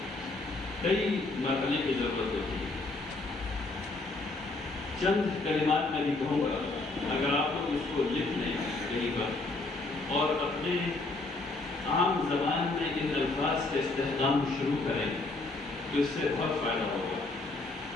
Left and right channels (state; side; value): quieter; right; 3.2 dB